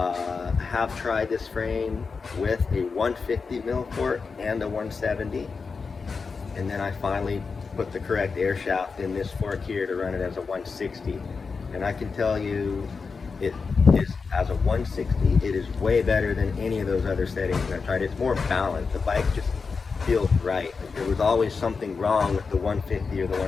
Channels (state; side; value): quieter; right; 4.9 dB